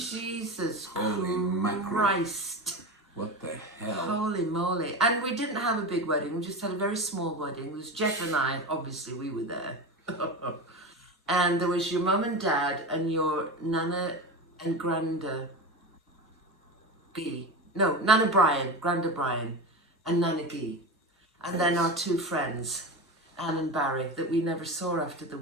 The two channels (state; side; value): normal; both; correlation 0.24